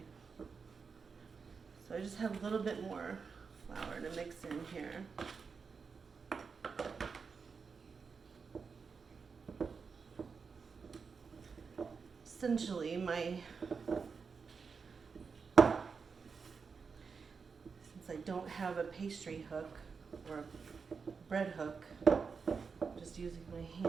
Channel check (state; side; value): quieter; left; 5.4 dB